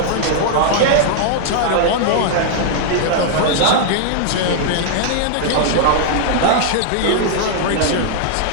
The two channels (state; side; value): different; both; correlation -0.01